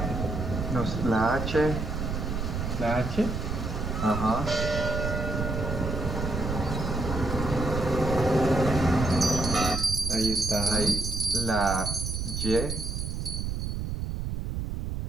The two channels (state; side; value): noise; right; rumble, 3 dB below the sound